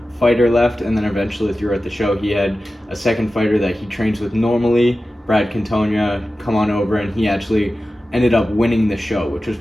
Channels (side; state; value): both; normal; correlation 0.94